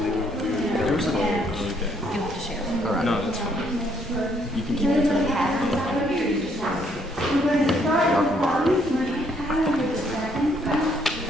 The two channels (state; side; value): normal; both; correlation 0.69